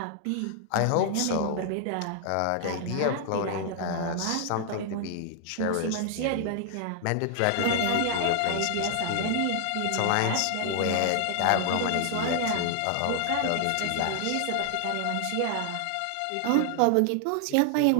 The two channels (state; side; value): different; both; correlation 0.00